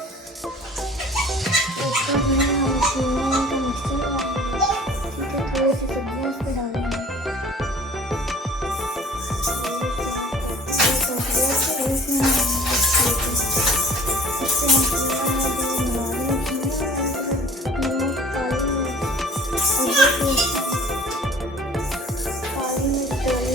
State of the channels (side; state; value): both; normal; correlation 0.48